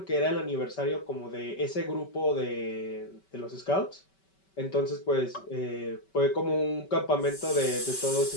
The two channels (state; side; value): late; right; 5.2 ms